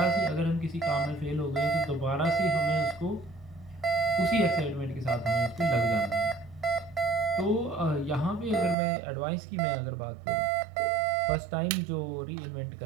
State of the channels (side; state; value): left; drops out; at 8.8 s